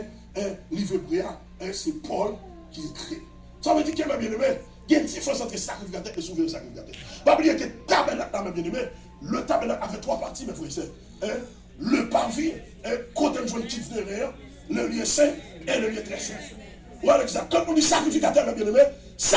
livre hébreu, c'est Paul qui écrit. Ça veut dire que, mes bien-aimés, il y a une différence entre sacrificateur et souverain sacrificateur. Pas oublier que le tabernacle, mes bien-aimés, le tabernacle avait trois parties, mes frères et sœurs. Le parvis, côté de joint qui derrière, le lieu saint et le lieu très saint. Voilà exact. Quand on dit sacrificateur, mes bien-aimés,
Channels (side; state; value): both; identical; correlation 1.00